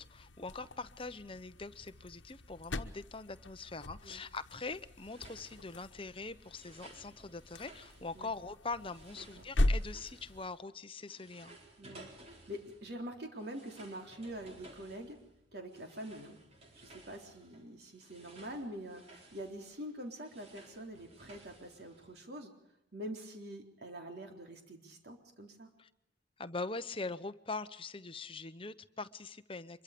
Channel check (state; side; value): normal; both; correlation 0.56